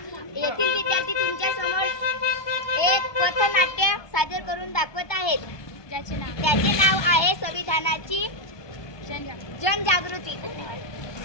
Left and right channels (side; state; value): right; late; 1.2 ms